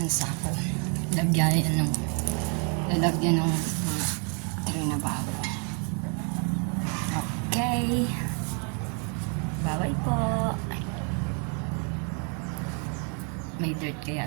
sako. Lalagyan ng tray na bago. Okay. Bye-bye po. May dirt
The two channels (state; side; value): quieter; left; 38.0 dB